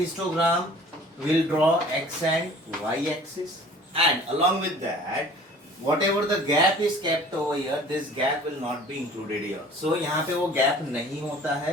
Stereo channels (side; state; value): both; normal; correlation 0.47